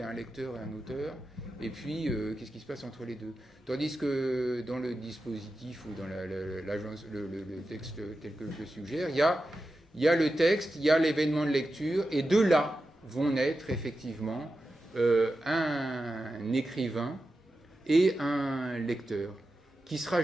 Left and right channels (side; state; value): both; normal; correlation 0.91